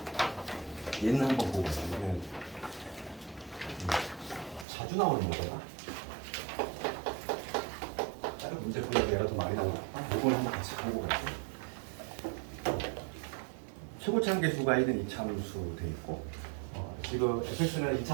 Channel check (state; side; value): drops out; left; at 4.7 s